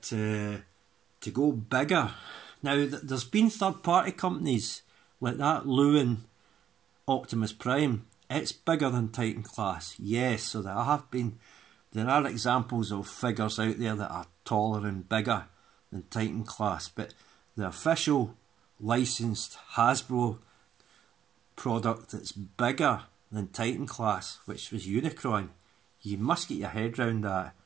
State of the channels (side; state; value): left; quieter; 9.7 dB